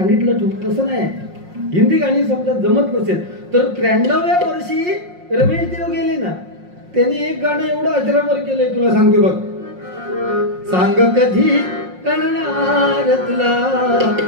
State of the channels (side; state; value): left; late; 5.6 ms